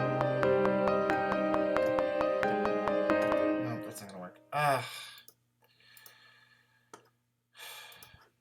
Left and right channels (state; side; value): identical; both; correlation 1.00